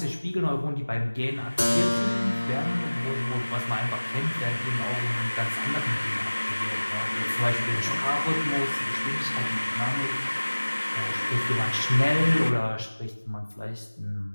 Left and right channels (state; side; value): inverted; both; correlation -1.00